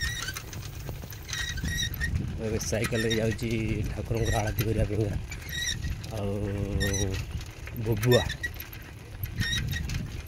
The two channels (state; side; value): identical; both; correlation 1.00